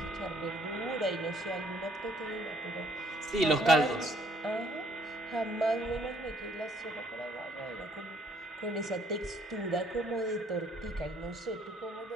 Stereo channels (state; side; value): normal; both; correlation 0.64